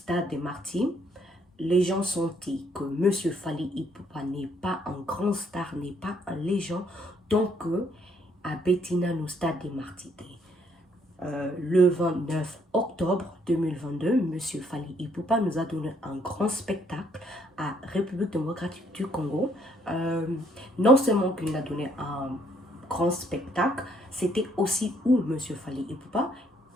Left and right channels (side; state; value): both; normal; correlation 0.68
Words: des Martyrs. Les gens sont dit que Monsieur Fally Ipupa n'est pas un grand star, n'est pas un légende, donc à Bettina, au stade des Martyrs. Le 29 octobre 2022, M. Fally Ipupa nous a donné un grand spectacle à République démocratique du Congo. Non seulement qu'il nous a donné un grand spectacle, c'était aussi où M. Fally Ipupa,